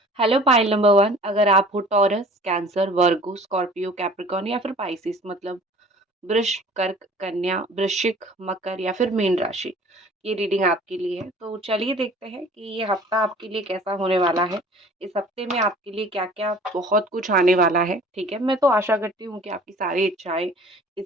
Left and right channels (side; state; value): both; normal; correlation 0.48